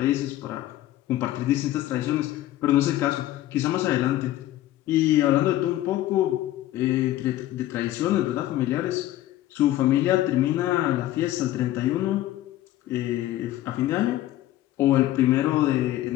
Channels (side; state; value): right; quieter; 14.4 dB